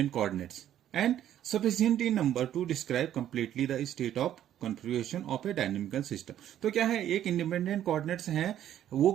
coordinates and sufficient in number to describe completely the state of configuration of a dynamical system. तो क्या है, एक इंडिपेंडेंट कोऑर्डिनेट्स हैं, वो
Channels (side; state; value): left; quieter; 11.2 dB